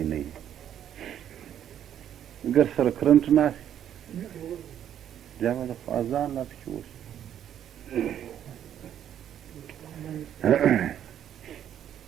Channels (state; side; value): quieter; left; 10.2 dB